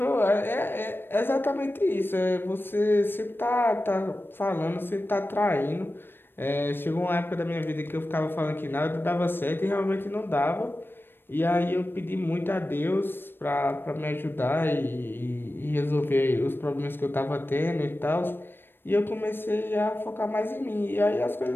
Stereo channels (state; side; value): late; right; 0.099 ms